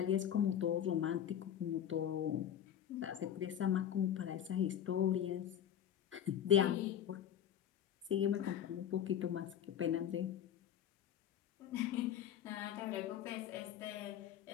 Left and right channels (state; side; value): quieter; right; 9.9 dB